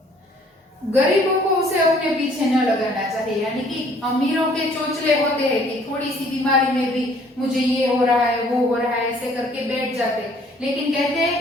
गरीबों को उसे अपने पीछे न लगाना चाहिए, यानी कि अमीरों के चोचले होते हैं कि थोड़ी सी बीमारी में भी मुझे ये हो रहा है वो हो रहा है ऐसे करके बैठ जाते, लेकिन कहते हैं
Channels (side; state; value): both; normal; correlation 0.59